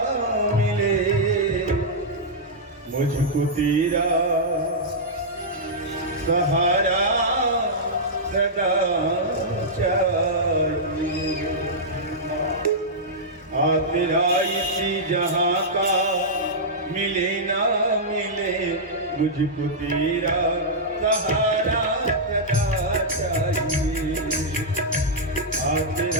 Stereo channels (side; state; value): both; normal; correlation -0.09